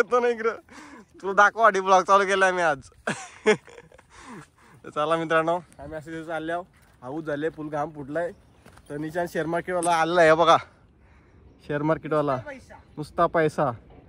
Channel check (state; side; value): identical; both; correlation 1.00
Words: ना इकडं. तुला दाखवा ब्लॉग चालू केलाय मी आज. चला मित्रांनो, आम्ही असे चालले आहो. हाऊस झाले, फुल घाम फुटलाय. तर निशान शेअर मार्केटवाला आलेला आहे बघा. शेअर मार्केटवाला नुसता पैसा.